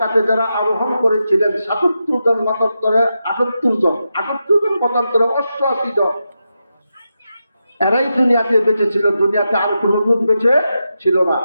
যারা আরোহণ করেছিলেন ৭৭ জন, মতান্তরে ৭৮ জন, ৭৮ জন মতান্তরে ৮৮ জন, এরাই দুনিয়াতে বেঁচে ছিল। দুনিয়াতে আর কোনো লোক বেঁচে ছিল না।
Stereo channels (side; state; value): both; inverted; correlation -0.88